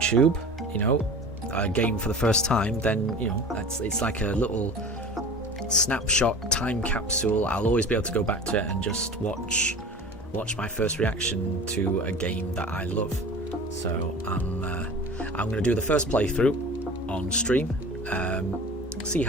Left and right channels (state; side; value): normal; both; correlation 0.38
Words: you know, a game for the first time, then, you know, it's like a little snapshot time capsule. I'll always be able to go back to it and just watch my first reaction to a game that I love. So I'm going to do the first playthrough on stream, see